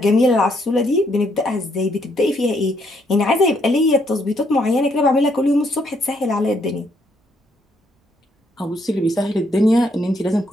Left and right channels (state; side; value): normal; both; correlation 0.72